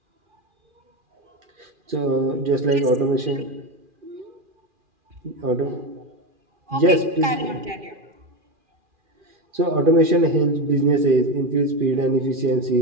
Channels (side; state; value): left; late; 2.4 ms